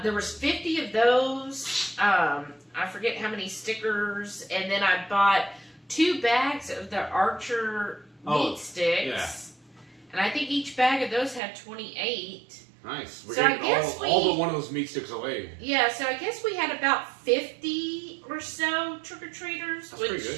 was 50 of those. I forget how many stickers, and then I bought 2 bags of the Archer meat sticks, and I think each bag of those had 28. Nice. We're getting all but one of those meat sticks away. Yeah, so I guess we had about 50 or so trick-or-treaters. That's pretty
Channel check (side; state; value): left; drops out; at 11.4 s